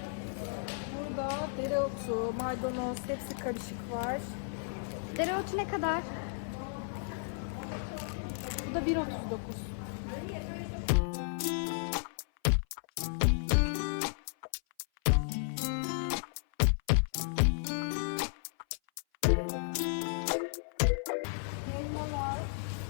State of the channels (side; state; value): right; silent; 55 dB below the other